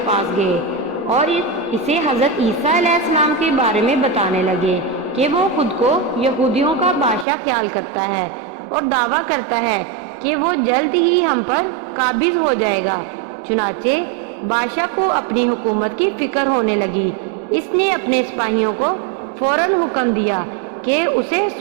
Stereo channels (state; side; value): drops out; left; at 7.2 s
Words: پاس گئے اور اسے حضرت عیسیٰ علیہ السلام کے بارے میں بتانے لگے کہ وہ خود کو یہودیوں کا بادشاہ خیال کرتا ہے اور دعویٰ کرتا ہے کہ وہ جلد ہی ہم پر قابض ہو جائے گا۔ چنانچہ بادشاہ کو اپنی حکومت کی فکر ہونے لگی۔ اس نے اپنے سپاہیوں کو فوراً حکم دیا کہ اسے